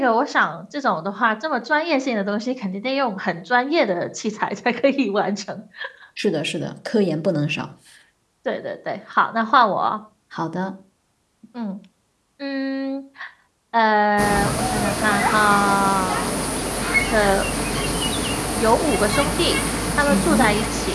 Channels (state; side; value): identical; both; correlation 1.00